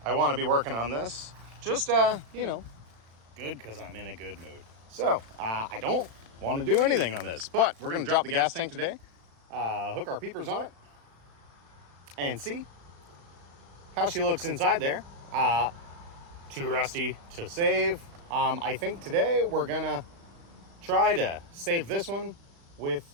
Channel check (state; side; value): late; left; 35 ms